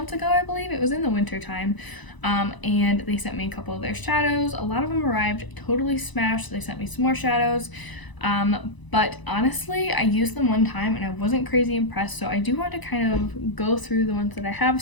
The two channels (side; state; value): right; late; 1.0 ms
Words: ago, I believe. It was in the winter time. And they sent me a couple of their shadows. A lot of them arrived totally smashed. They sent me some more shadows. But honestly, I used them one time and I wasn't crazy impressed, so I do want to kind of go through the ones that I have